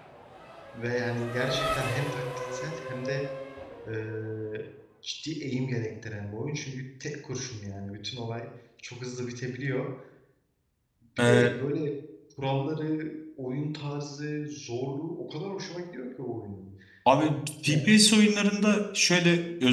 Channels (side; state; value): both; identical; correlation 1.00